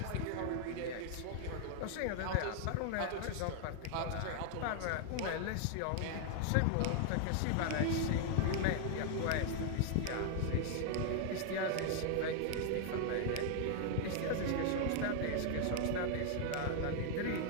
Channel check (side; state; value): both; different; correlation 0.00